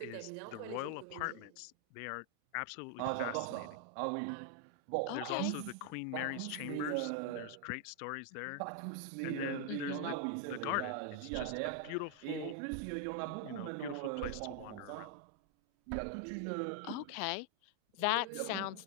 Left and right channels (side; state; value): both; different; correlation 0.00